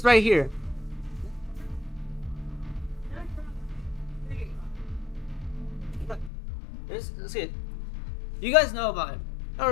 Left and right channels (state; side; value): drops out; right; at 6.3 s